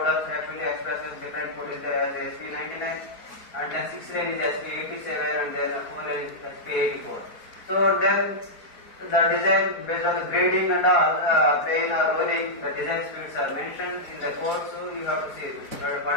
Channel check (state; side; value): late; right; 4.5 ms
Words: actually express as different code is as SP99, and then 6 lane is SP87, and then 4 lane is SP84. So then the design based on the grading and all, plane or rolling, the design speeds are mentioned in the code, so you have to see it.